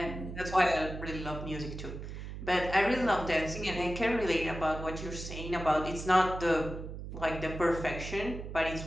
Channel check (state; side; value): noise; right; hum, 9 dB below the sound